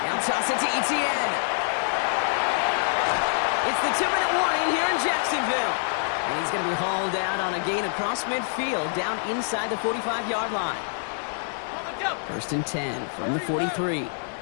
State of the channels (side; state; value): right; silent; digital silence